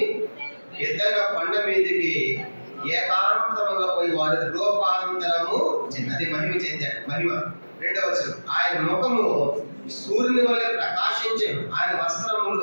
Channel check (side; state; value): both; inverted; correlation -1.00